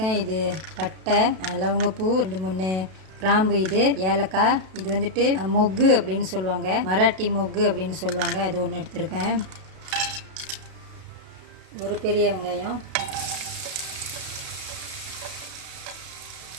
இது பட்டை, லவங்கப்பூ, 2-3 கிராம்பு, இது ஏலக்காய், இது வந்துட்டு மொக்கு அப்படின்னு சொல்லுவாங்க, மராட்டி மொக்கு அப்படின்னு சொல்லுவாங்க. அது ஒன்று எடுத்திருக்கேன். ஒரு பெரிய வெங்காயம்,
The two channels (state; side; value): late; left; 32 ms